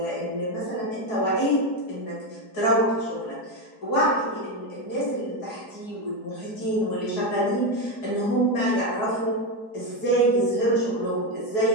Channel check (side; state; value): right; late; 4.7 ms